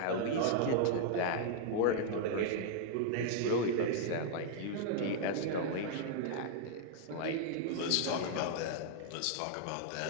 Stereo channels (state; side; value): different; both; correlation -0.01